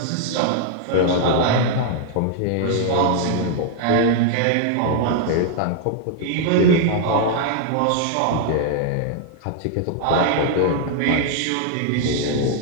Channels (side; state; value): both; different; correlation 0.00